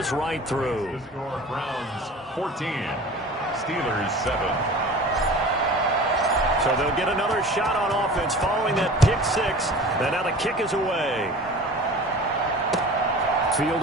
right through. The score, Browns 14, Steelers 7. So they'll get another shot on offense following that pick six. And now the kick is away.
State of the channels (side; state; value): both; normal; correlation 0.40